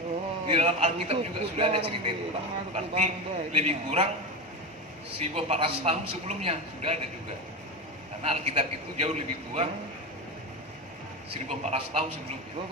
Di dalam Alkitab juga sudah ada cerita itu Pak. Berarti lebih kurang 1400 tahun sebelumnya sudah ada juga. Karena Alkitab itu jauh lebih tua, 1400 tahun sebelumnya.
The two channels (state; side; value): normal; both; correlation 0.19